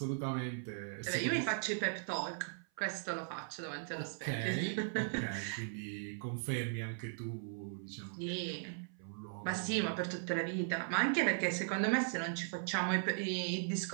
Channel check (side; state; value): left; silent; 52 dB below the other